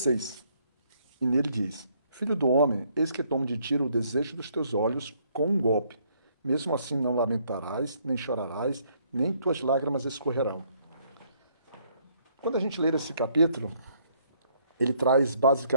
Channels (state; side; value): inverted; both; correlation -0.68